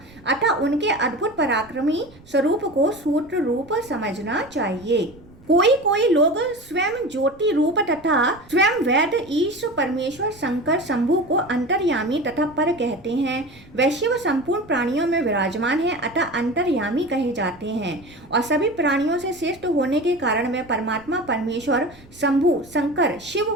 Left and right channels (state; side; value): noise; right; rumble, 24 dB below the sound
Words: अतः उनके अद्भुत पराक्रमी स्वरूप को सूत्र रूप समझना चाहिए। कोई लोग स्वयं ज्योति रूप तथा स्वयं वेद ईश परमेश्वर शंकर शंभु को अंतर्यामी तथा पर कहते हैं। वह शिव संपूर्ण प्राणियों में विराजमान है, अतः अंतर्यामी कहे जाते हैं और सभी प्राणियों से श्रेष्ठ होने के कारण वे परमात्मा परमेश्वर शंभु शंकर शिव